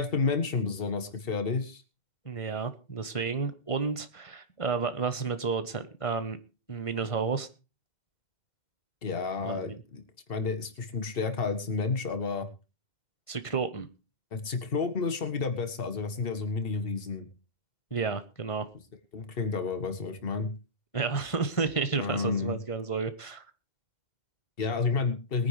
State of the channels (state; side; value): late; right; 1.5 ms